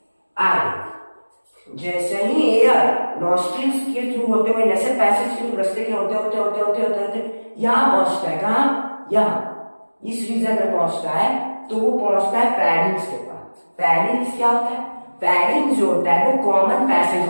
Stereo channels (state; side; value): inverted; both; correlation -1.00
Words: आगे जैसे ही एयर नॉस्ट्रिल्स के थ्रू होते हुए, नेसल पैसेज के थ्रू रास्ते के होते होते होते होते होते होते यहाँ पहुंचता है, कहाँ? यहाँ इस रीजन में पहुंचता है, तो वो पहुंचता है फेरिंग्स के पास। फेरिंग्स क्या होता है? फेरिंग्स जो होता है वो कॉमन पैसेज